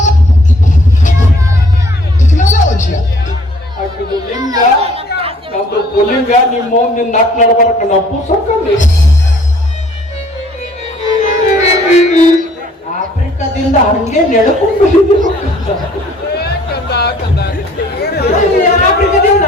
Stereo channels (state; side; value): normal; both; correlation 0.58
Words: ಹಾಕಿದ್ದು ಲಿಂಗ ನಮ್ದು ಪುಲಿಂಗ ನಿಮ್ಮ ನಿನ್ನ ನಾಕ್ ನಡ್ಬಾರಕ ನಾವು ಪುಸ್ತಕಲ್ಲಿ ಆಫ್ರಿಕಾದಿಂದ ಹಂಗೆ ನೆಡ್ಕೊಂಡು ಆಫ್ರಿಕಾದಿಂದ